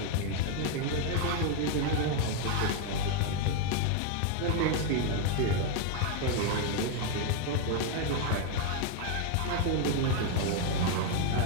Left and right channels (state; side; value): different; both; correlation 0.01